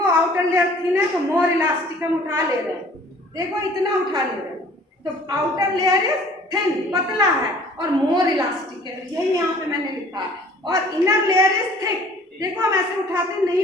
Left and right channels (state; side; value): normal; both; correlation 0.52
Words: आउटर लेयर थिन है तो मोर इलास्टिक हम उठा ले रहे हैं, देखो इतना उठा ले रहे हैं, तो आउटर लेयर इज थिन, पतला है, और मोर इलास्टिक है, यही यहाँ पे मैंने लिखा है। और इनर लेयर इज थिक, देखो हम ऐसे उठाते नहीं